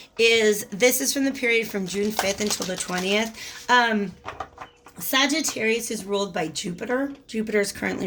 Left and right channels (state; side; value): identical; both; correlation 1.00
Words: is, this is from the period from June 5th until the 20th. Sagittarius is ruled by Jupiter. Jupiter is